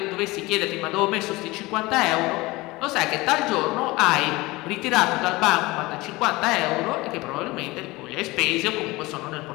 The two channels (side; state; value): right; quieter; 21.4 dB